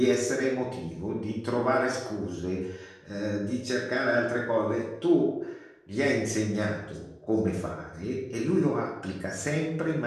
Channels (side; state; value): both; identical; correlation 1.00